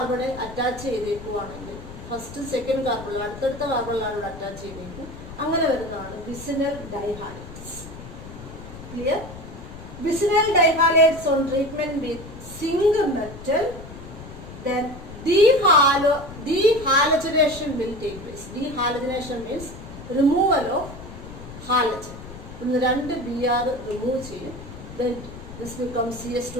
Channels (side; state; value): left; noise; rumble, 14 dB below the sound